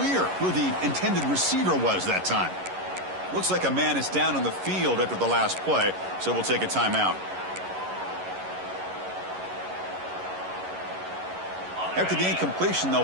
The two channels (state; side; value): late; left; 11 ms